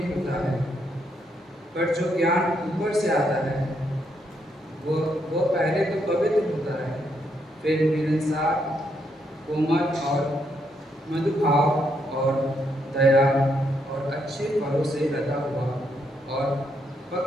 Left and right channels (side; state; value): both; normal; correlation 0.76